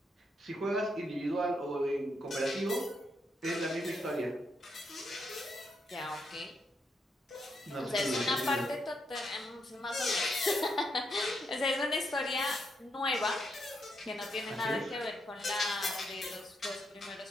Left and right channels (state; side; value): normal; both; correlation 0.79